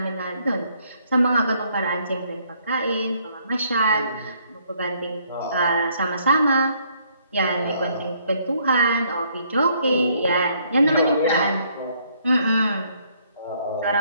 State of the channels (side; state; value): both; inverted; correlation -0.67